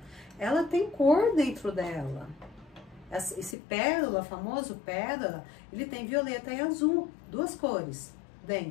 ela tem cor dentro dela. Esse pérola, famoso pérola, ele tem violeta e azul, duas cores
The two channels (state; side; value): drops out; right; at 3.6 s